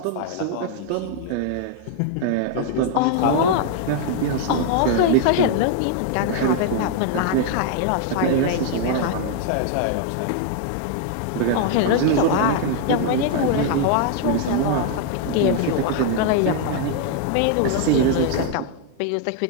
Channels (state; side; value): different; both; correlation 0.00